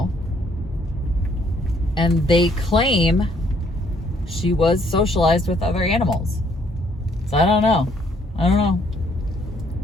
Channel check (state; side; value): normal; both; correlation 0.66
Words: and they claim she was socialized with other animals. So I don't know. I don't